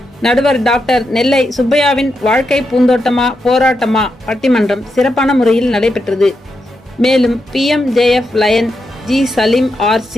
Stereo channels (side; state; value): both; normal; correlation 0.85